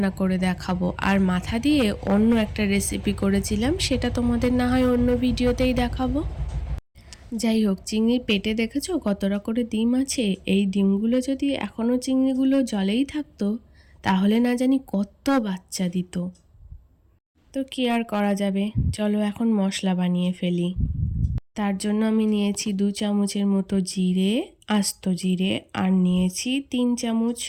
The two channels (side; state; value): both; identical; correlation 1.00